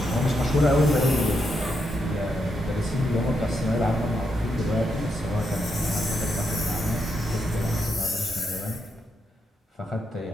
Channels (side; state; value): both; normal; correlation 0.81